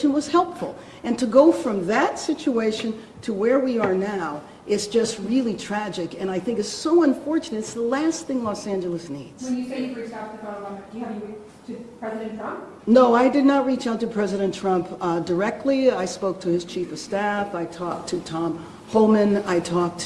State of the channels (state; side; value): identical; both; correlation 1.00